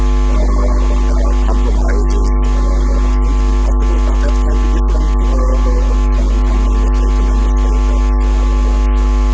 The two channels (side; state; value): both; identical; correlation 1.00